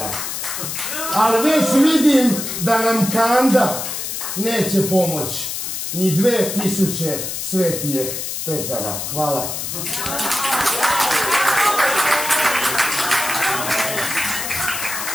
Ali već vidim da nam kanda neće pomoći ni 2000 svetijeh Petara. Hvala.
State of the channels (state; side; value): noise; left; hiss, 4 dB below the sound